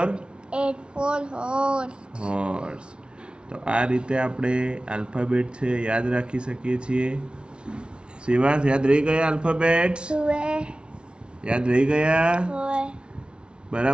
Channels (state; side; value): late; left; 0.057 ms